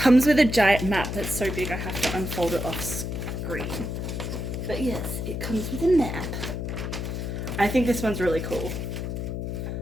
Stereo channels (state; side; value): noise; left; hum, 4 dB below the sound